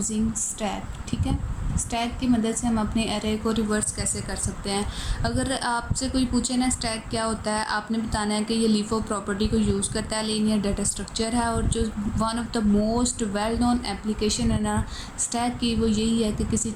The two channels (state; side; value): identical; both; correlation 1.00